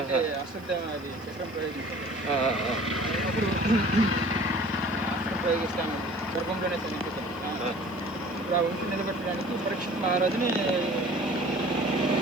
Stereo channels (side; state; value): right; noise; hiss, 27 dB below the sound